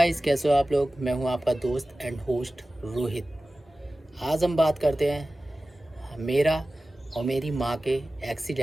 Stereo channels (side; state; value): both; normal; correlation 0.96